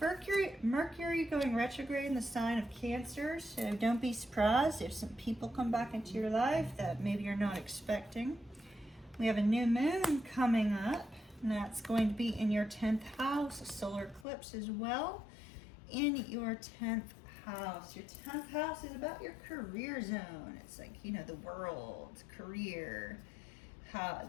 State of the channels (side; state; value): right; drops out; at 14.2 s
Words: Mercury going retrograde in the sign of Cancer, so don't be surprised if some people come back into your life that maybe you're not expecting. We have a new moon coming up, and that's going to be in your 10th house, a solar eclipse as well, in your 10th house. Your 10th house is about your career zone. It's like, you know, the world, career, how